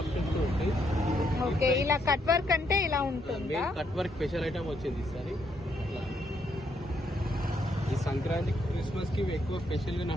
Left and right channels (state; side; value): normal; both; correlation 0.75